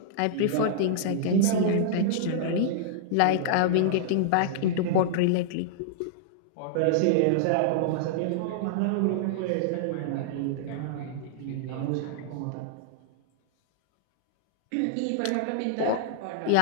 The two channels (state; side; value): different; both; correlation -0.01